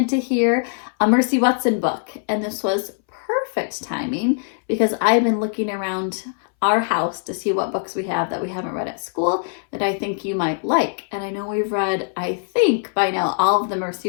to hear a Mercy Watson book, and this was perfect timing because I've been looking around our house to see what books we have that we haven't read at school that I think you might like. And I know we've read, I think by now, all of the Mercy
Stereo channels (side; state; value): right; silent; 63 dB below the other